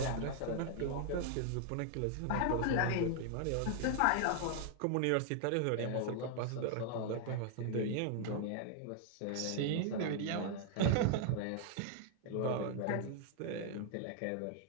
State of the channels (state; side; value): different; both; correlation 0.00